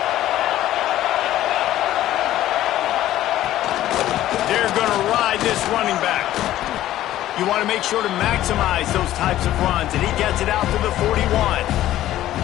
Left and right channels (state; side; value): quieter; right; 13.8 dB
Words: They're going to ride this running back. You want to make sure to maximize those types of runs, and he gets it out to the 41.